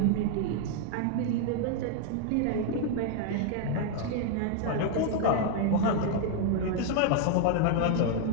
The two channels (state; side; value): different; both; correlation 0.00